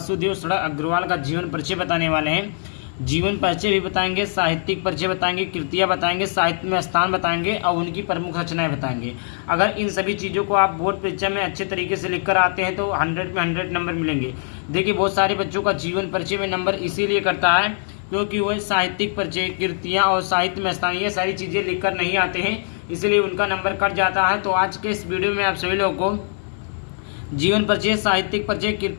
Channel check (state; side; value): silent; right; digital silence